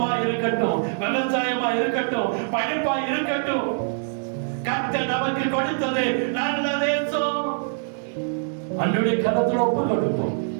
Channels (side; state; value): left; silent; digital silence